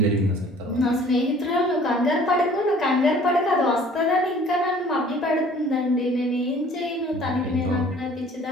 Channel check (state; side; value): normal; both; correlation 0.52